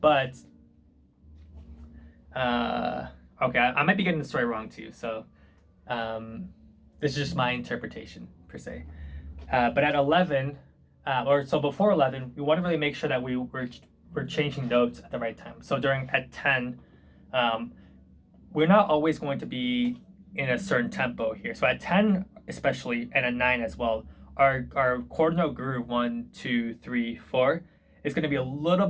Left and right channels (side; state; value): both; identical; correlation 1.00